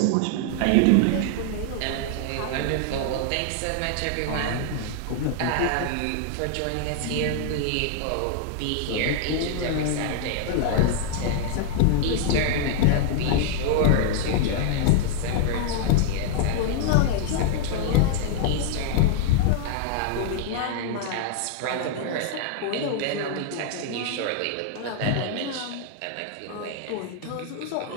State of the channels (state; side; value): different; both; correlation -0.01